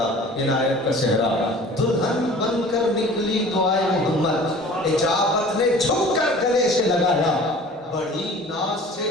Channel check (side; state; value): both; normal; correlation 0.45